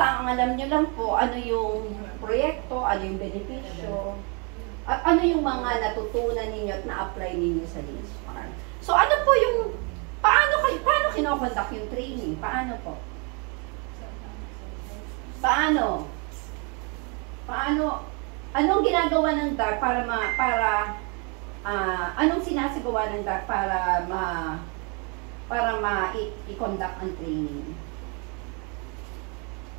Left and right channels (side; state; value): left; quieter; 33.9 dB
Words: ang alam nyo lang po, ano yung proyekto, ano yung benepisyo, at ano yung mga natutunan ninyo at na-apply ninyo sa links farm. So ano po yung, paano kinokonduct yung training? Paano po? Paano? Anong ginagawa ng DAR anong sinasagawa ng DAR para i-conduct ang training?